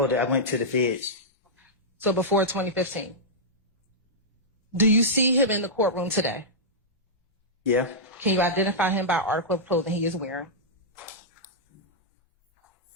that, I went to the feds. So before 2015. Do you see him in the courtroom today? Yeah. Can you identify him by article of clothing he is wearing?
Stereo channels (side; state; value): both; normal; correlation -0.11